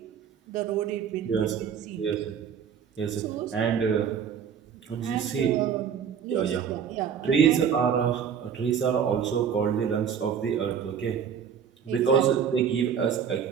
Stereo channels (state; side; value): quieter; left; 7.7 dB